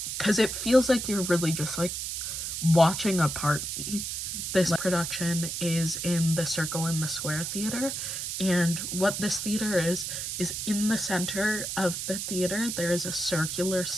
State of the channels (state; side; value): noise; right; hiss, 4 dB below the sound